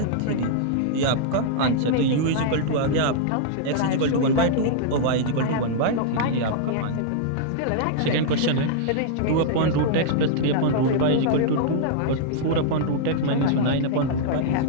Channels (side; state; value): both; different; correlation -0.02